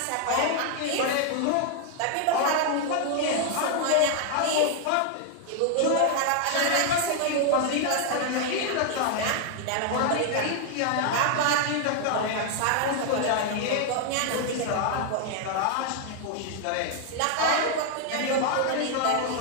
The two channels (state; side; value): different; both; correlation 0.00